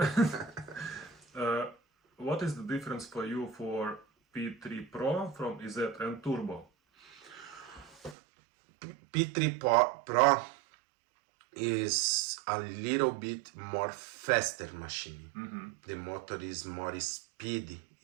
What is the difference for you for P3 Pro from EZ and Turbo? P3 Pro is a little bit more faster machine. The motor is more speedy,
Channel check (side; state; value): left; drops out; at 8.2 s